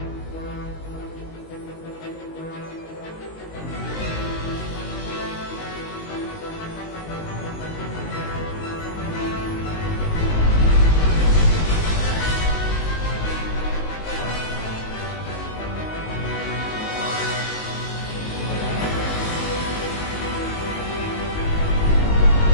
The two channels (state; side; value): late; right; 19 ms